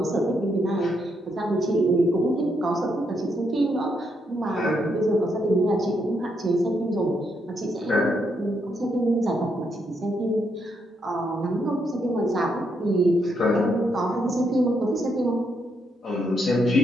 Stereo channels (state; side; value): normal; both; correlation 0.78